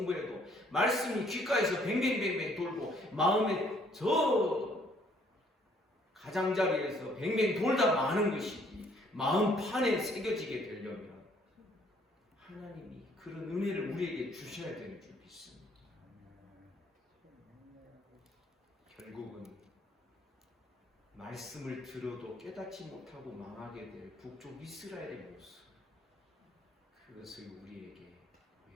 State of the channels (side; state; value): both; normal; correlation 0.64